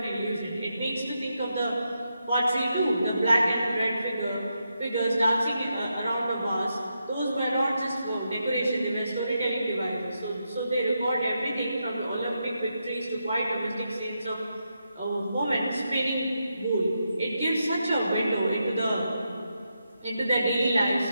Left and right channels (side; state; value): both; inverted; correlation -0.84